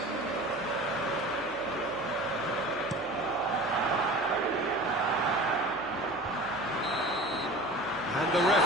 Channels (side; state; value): left; noise; hum, 23 dB below the sound